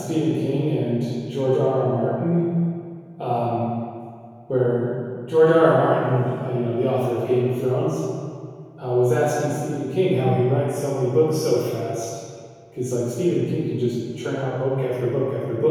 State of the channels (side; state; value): both; identical; correlation 1.00